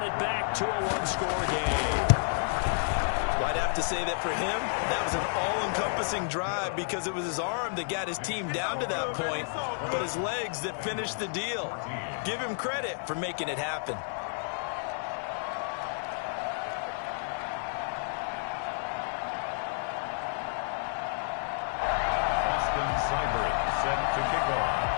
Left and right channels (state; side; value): silent; right; 57 dB below the other